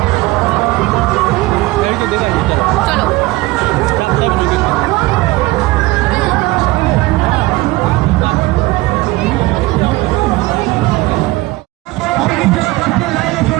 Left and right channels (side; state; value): left; quieter; 20.4 dB